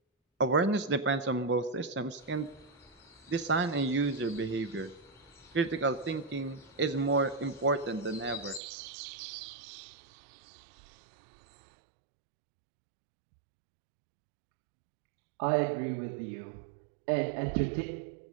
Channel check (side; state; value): left; drops out; at 8.6 s